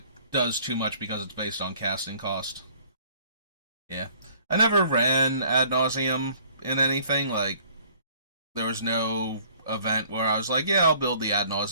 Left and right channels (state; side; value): inverted; both; correlation -0.55